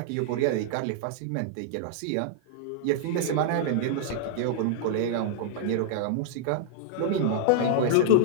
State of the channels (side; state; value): both; different; correlation -0.01